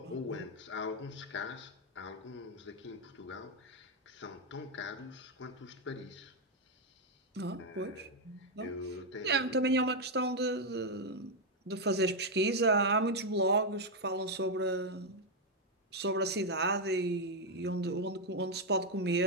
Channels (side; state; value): both; normal; correlation 0.02